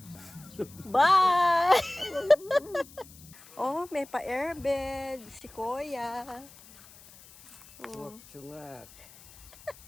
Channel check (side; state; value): left; noise; hiss, 22 dB below the sound